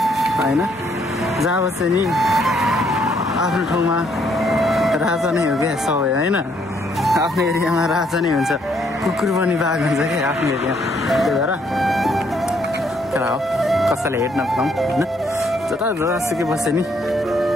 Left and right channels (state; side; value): normal; both; correlation 0.69